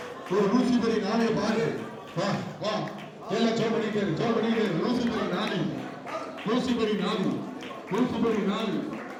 ஒரு லூசிபரி நாளையை பார்க்க. வா வா எல்லாம் ஜோ பண்ணிட்டு லூசிபரி நாளை, லூசிபரி நாளை, லூசிபரி நாளை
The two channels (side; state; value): both; identical; correlation 1.00